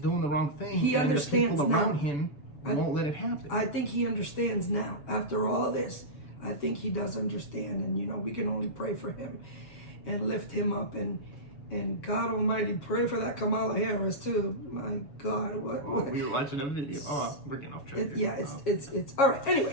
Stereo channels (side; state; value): right; late; 7.3 ms